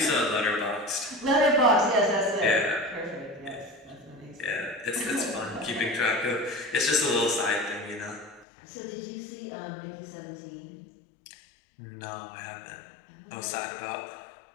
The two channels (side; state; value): right; drops out; at 8.5 s